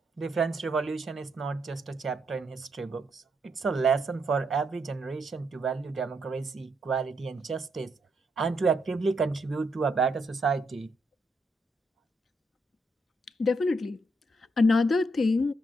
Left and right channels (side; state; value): both; normal; correlation 0.78